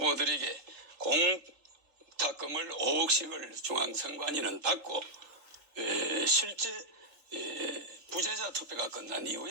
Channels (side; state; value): left; late; 3.4 ms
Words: 공탁금을 5억씩을 중앙선관위는 받고 실제 부재자 투표가 끝난